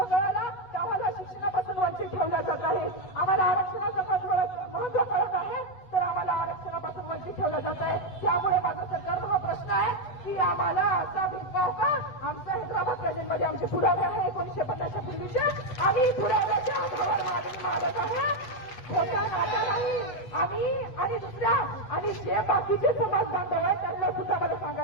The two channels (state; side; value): late; right; 8.2 ms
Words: कळाला तर आम्हाला शिक्षणापासून वंचित ठेवलं जात आहे. आम्हाला आरक्षणाचं महत्व कळत आहे तर आम्हाला आरक्षणापासून वंचित ठेवलं जात आहे. त्यामुळे माझा सरकारला हा प्रश्न आहे की आम्हाला असा भेदभाव का? आमचा हैदराबाद प्रोजेक्टमध्ये आमचे पुरावे आहे 1950च्या पूर्वीचे. आम्ही पुराव्याच्या आधारावर मागणी मागत आहे. खोटा नाता नाही. आम्ही आणि दुसऱ्या आणि जे बाकीचे समाज बांधव आहेत त्यांना सुद्धा मला